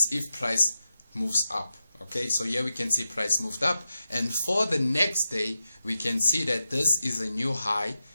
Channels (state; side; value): inverted; both; correlation -0.90